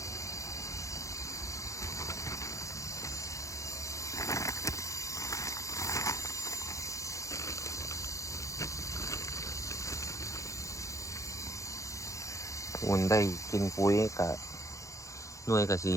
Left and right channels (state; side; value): late; right; 0.15 ms